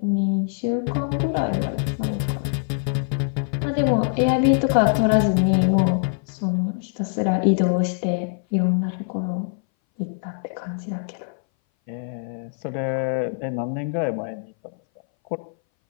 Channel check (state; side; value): silent; right; 60 dB below the other